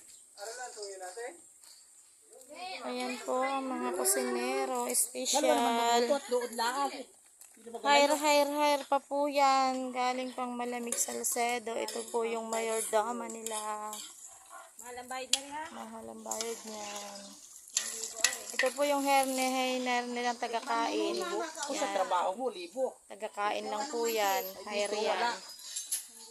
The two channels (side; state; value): both; identical; correlation 1.00